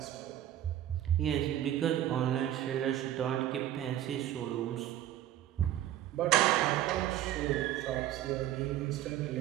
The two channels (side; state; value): left; quieter; 12.5 dB